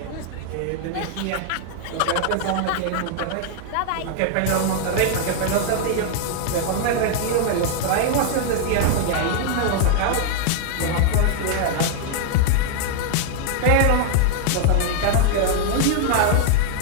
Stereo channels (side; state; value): both; different; correlation 0.00